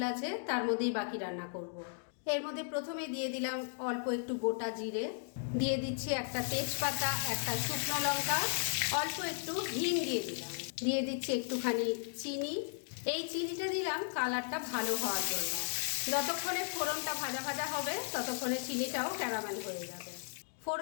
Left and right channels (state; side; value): silent; right; digital silence